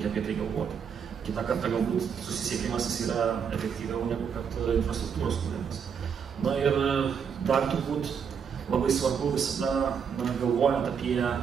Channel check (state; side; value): quieter; left; 7.0 dB